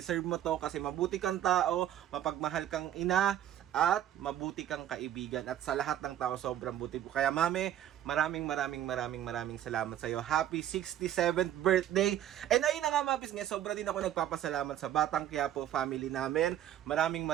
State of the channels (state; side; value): quieter; left; 11.3 dB